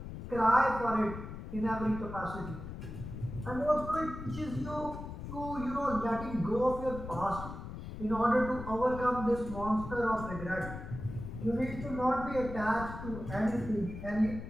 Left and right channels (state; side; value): noise; left; rumble, 9 dB below the sound